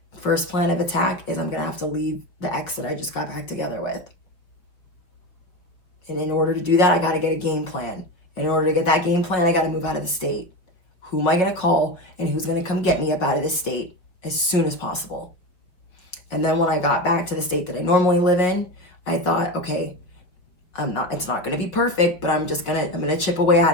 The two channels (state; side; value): late; right; 5.2 ms